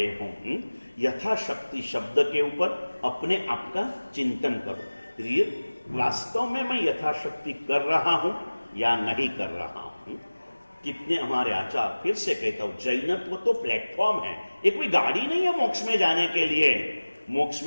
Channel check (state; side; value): inverted; both; correlation -1.00